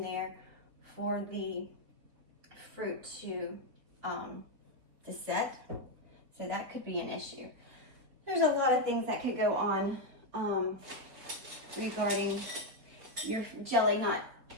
there for the fruit to set. So that could be an issue. There's a lot of things that could go on regarding your jelly not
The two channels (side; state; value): left; late; 4.4 ms